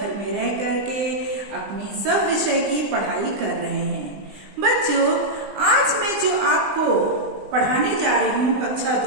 में रह करके अपनी सब विषय की पढ़ाई कर रहे हैं। बच्चों, आज मैं जो आपको पढ़ाने जा रही हूँ कक्षा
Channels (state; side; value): late; left; 20 ms